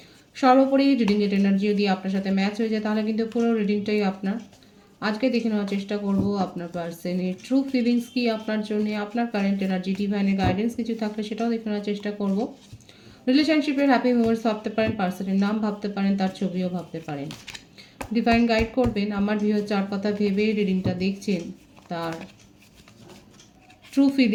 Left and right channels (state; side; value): identical; both; correlation 1.00